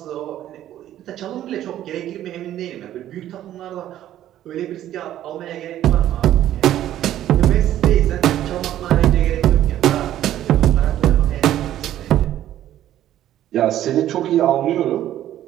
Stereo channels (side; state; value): left; quieter; 12.4 dB